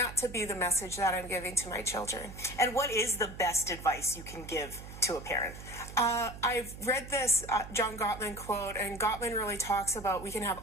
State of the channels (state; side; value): noise; right; hum, 13 dB below the sound